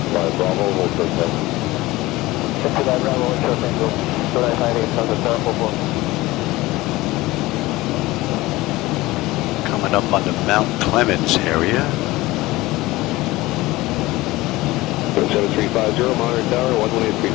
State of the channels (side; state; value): right; quieter; 19.3 dB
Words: Bravo, hold short tango. Taxi Bravo, hold short tango, 958, Coming up on the Mount Clemens area. 7350, Monitor Tower,